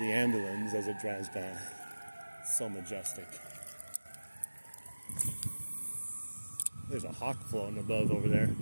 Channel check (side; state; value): both; inverted; correlation -1.00